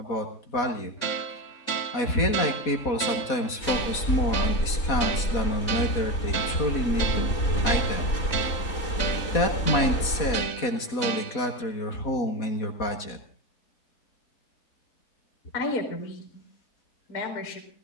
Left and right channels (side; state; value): right; late; 4.1 ms